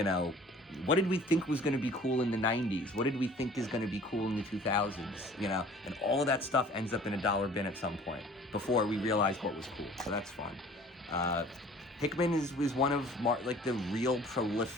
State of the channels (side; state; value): both; normal; correlation 0.50